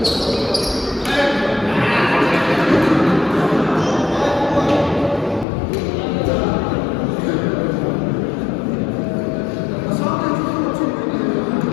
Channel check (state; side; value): drops out; right; at 5.5 s